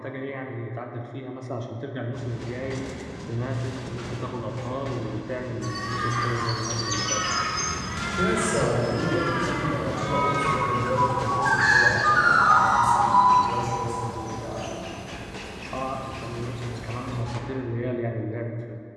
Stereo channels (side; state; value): both; identical; correlation 1.00